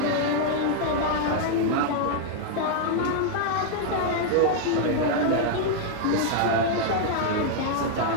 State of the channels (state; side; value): different; both; correlation -0.01